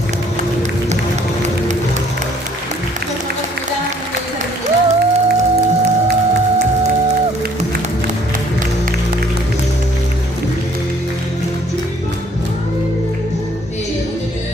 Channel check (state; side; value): normal; both; correlation 0.61